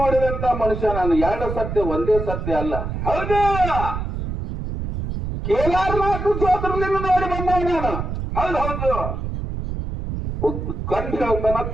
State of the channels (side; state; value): right; noise; rumble, 5 dB below the sound